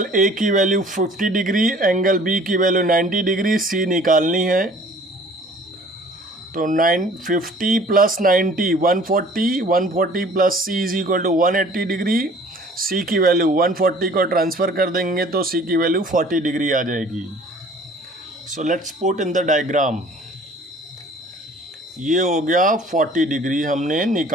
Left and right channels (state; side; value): normal; both; correlation 0.51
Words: A की वैल्यू 50 डिग्री, एंगल B की value 90 degree, C निकालनी है। तो 50 plus 90 140, 140 plus C is equal to 180 degree. C की value 140 को transfer कर देंगे तो C की वैल्यू 40 डिग्री आ जाएगी। So let's put in the diagram. ये हो गया 40 डिग्री, हमने